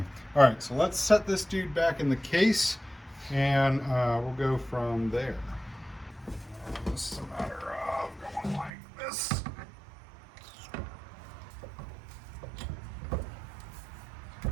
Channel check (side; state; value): left; drops out; at 8.7 s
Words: all right, so let's set this dude back in the case and we'll go from there. This is a matter of going like this.